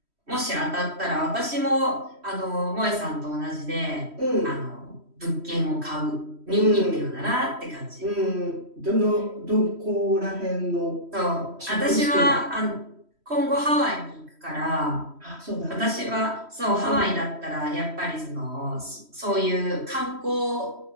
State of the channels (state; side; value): late; left; 3.1 ms